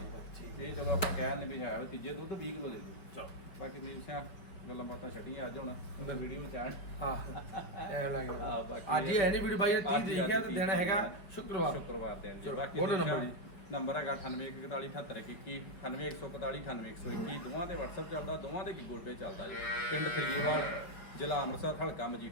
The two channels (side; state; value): right; late; 5.6 ms